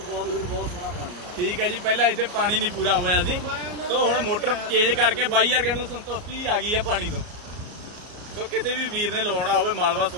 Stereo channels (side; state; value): left; late; 34 ms